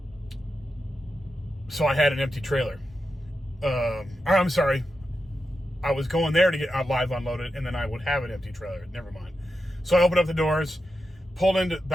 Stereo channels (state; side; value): normal; both; correlation 0.89